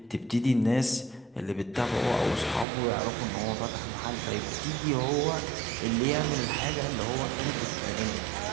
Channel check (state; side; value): drops out; left; at 2.7 s